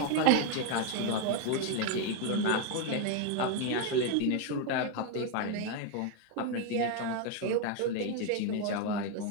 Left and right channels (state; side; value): different; both; correlation 0.01